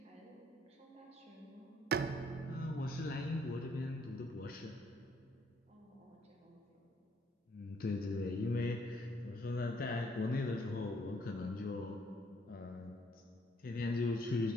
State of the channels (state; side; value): normal; both; correlation 0.67